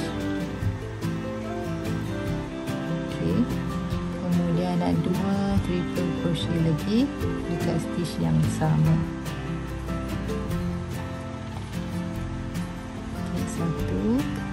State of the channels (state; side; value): identical; both; correlation 1.00